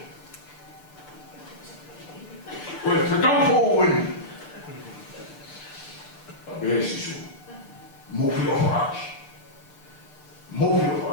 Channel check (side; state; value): right; late; 6.8 ms